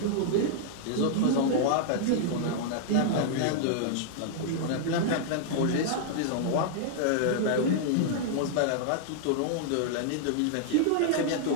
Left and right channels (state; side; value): different; both; correlation -0.01